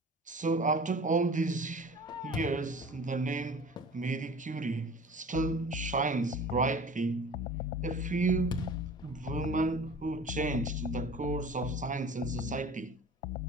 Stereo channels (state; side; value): normal; both; correlation 0.42